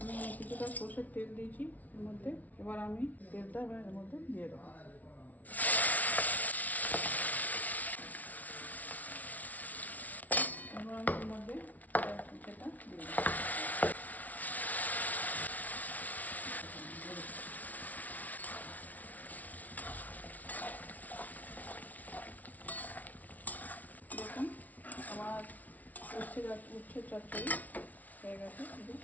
কিছুটা সর্ষের তেল দিয়েছি এর মধ্যে। এবার আমি তেলটা এর মধ্যে দিয়ে দেবো। এবার আমি এর মধ্যে সেটা দিয়ে দেবো। দেখুন আমার উচ্ছে চচ্চড়ি হয়ে গেছে, শুধু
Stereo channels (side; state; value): right; late; 0.074 ms